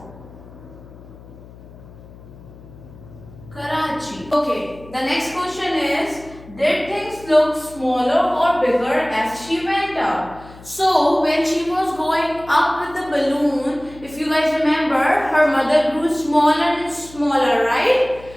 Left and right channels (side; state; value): left; noise; hum, 20 dB below the sound